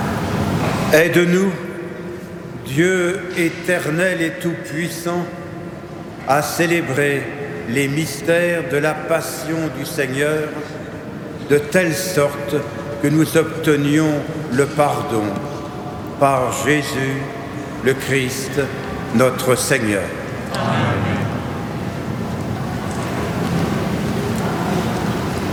Aide-nous, Dieu éternel et tout-puissant, à célébrer les mystères de la passion du Seigneur, de telle sorte que nous obtenions le pardon par Jésus, le Christ, notre Seigneur. Amen.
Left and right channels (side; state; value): both; identical; correlation 1.00